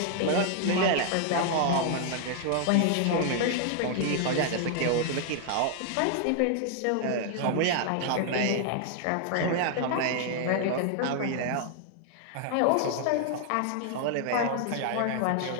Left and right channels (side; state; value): both; different; correlation 0.00